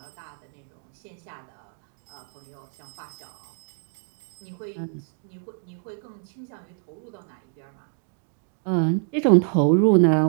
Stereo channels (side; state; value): left; silent; digital silence